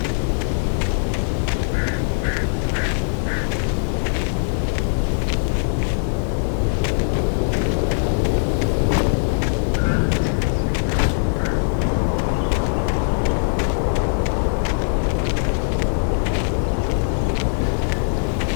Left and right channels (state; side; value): silent; right; digital silence